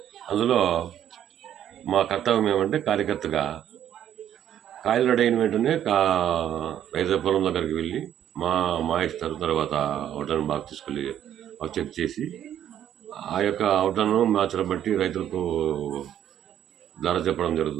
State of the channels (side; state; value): left; quieter; 10.6 dB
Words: అందులో మా కర్తవ్యం ఏమంటే కార్యకర్తగా కాయలు రెడీ అయిన వెంటనే రైతు పొలం దగ్గరికి వెళ్ళి మా ఇస్తారు. తర్వాత అవుట్లను బాగా తీసుకెళ్ళి చెక్ చేసి ఆ యొక్క అవుట్లను మ్యాచ్లను బట్టి రైతులకు ధర చెప్పడం